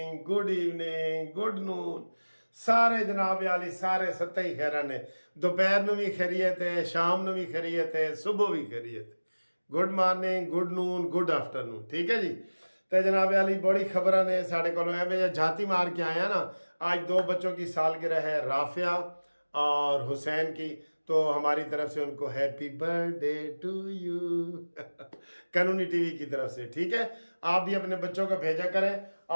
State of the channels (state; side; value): inverted; both; correlation -1.00